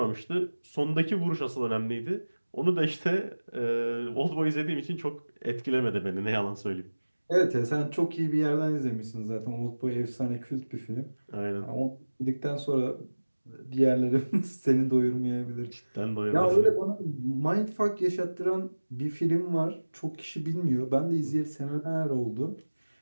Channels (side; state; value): both; inverted; correlation -1.00